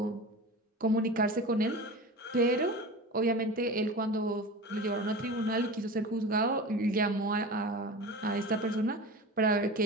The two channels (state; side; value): normal; both; correlation 0.32